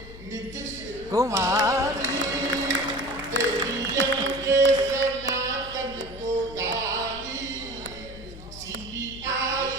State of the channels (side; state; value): left; noise; hum, 15 dB below the sound